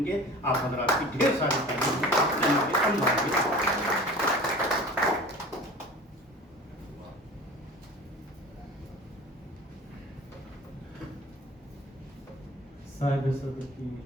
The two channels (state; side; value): normal; both; correlation 0.40